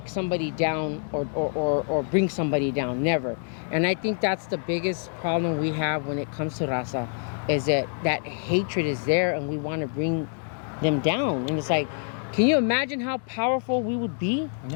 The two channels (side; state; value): right; silent; 61 dB below the other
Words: somebody down or bring somebody down. Never. And I think that's the biggest problem we have when it comes to raza, is that hatred is there, and we want to bring them down. And it's like, can you imagine how powerful we would be?